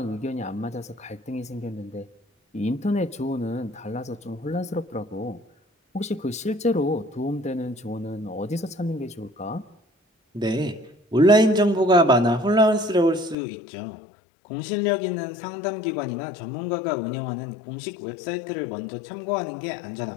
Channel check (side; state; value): right; drops out; at 13.4 s